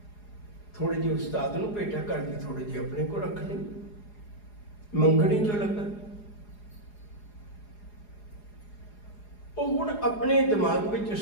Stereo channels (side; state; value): right; late; 4.8 ms